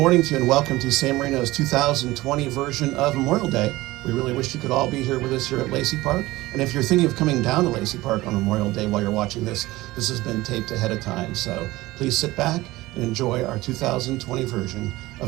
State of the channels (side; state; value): left; quieter; 18.8 dB